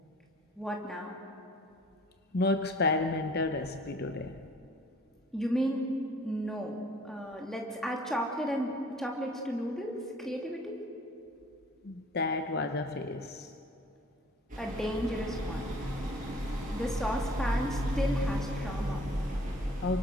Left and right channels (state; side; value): normal; both; correlation 0.54